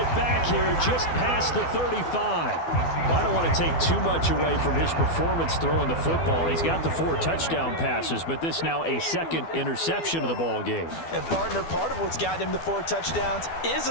back here just past the 35. Well, I don't want to take too much away from his performance throwing the football. He's got the 4 touchdown passes, but this now a second interception of the ball game. And partner, part of what's gotten him the 4 touchdowns is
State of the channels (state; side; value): late; right; 12 ms